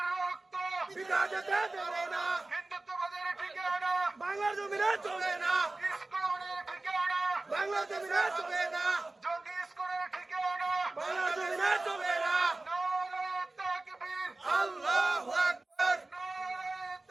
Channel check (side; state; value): left; quieter; 3.0 dB